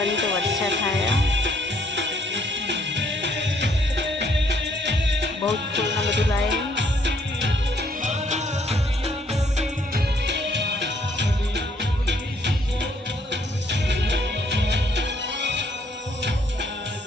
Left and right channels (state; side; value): normal; both; correlation 0.67